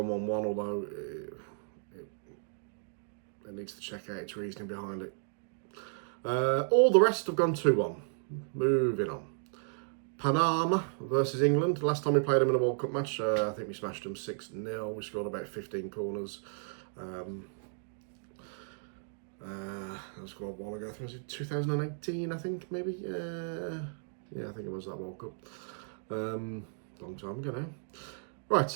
1-1, although it needs to check out its reasoning behind it. All the rest have gone 2-1. Moving on. Panama versus England. Last time we played them in a World Cup match, I think we smashed them 6-0. We scored about 15 corners. That was quite a while ago. I think it was 2018, I think, maybe. Yeah, I think it was that World Cup. Long time ago now.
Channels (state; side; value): silent; left; digital silence